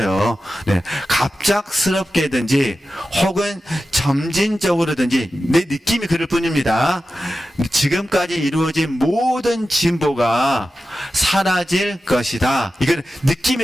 네. 갑작스럽게든지 혹은 점진적으로든지 내 느낌이 그럴 뿐입니다. 지금까지 이루어진 모든 진보가 사라질 것이다. 이건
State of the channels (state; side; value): normal; both; correlation 0.93